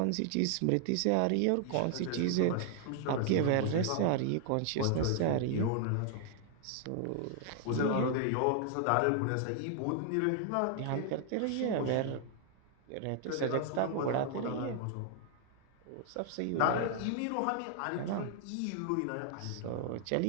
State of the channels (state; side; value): different; both; correlation 0.00